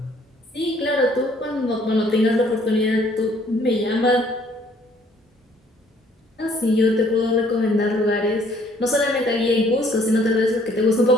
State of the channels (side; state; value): both; normal; correlation 0.61